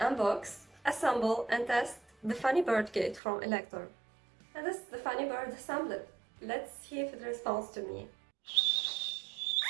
assemble and test the Funny Bird kit from Elektor. And this is the Funny Bird assembly. Let's see if it responds to me.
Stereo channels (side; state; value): left; drops out; at 3.2 s